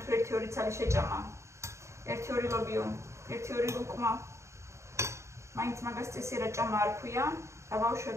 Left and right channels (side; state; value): left; late; 0.14 ms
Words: თუ 1-2 ცალი შეჭამა. 1-2 ლობიო, 1-2 ლუკმა. მაინც მაგას წესი რა ჭამა არ ქვია. და